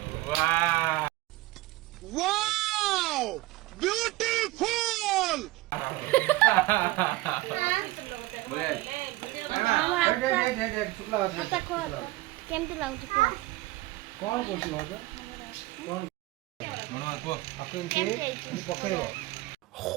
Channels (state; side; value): quieter; left; 19.0 dB